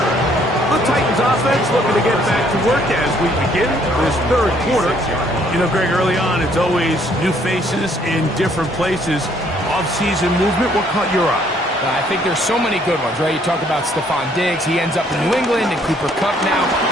The Titans offense looking to get back to work as we begin this third quarter. You know, Greg, early on, it's always new faces in different places. Off-season movement, what caught your eye? I think there's so many good ones, right? You talk about Stephon Diggs. He ends up in New England, and Cooper Kupp now.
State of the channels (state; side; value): normal; both; correlation 0.65